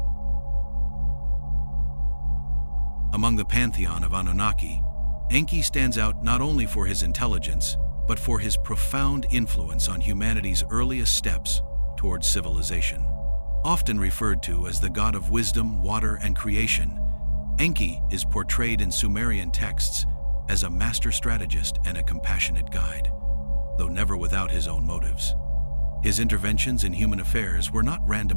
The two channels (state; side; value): inverted; both; correlation -1.00